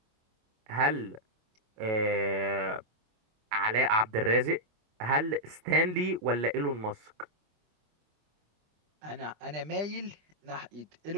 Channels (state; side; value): late; left; 25 ms